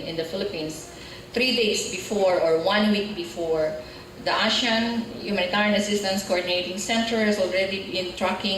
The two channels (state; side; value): identical; both; correlation 1.00